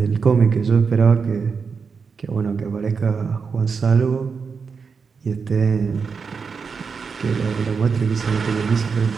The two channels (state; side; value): quieter; left; 5.5 dB